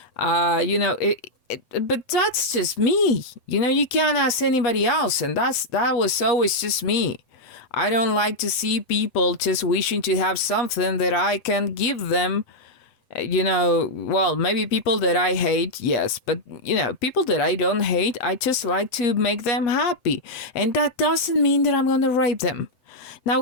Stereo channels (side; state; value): right; late; 7.9 ms